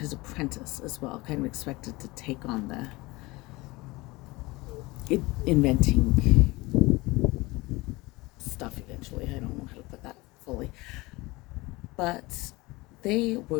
apprentice as well, kind of expected to take on the inventing stuff eventually. I don't know how to put that fully. But they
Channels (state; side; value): quieter; right; 22.3 dB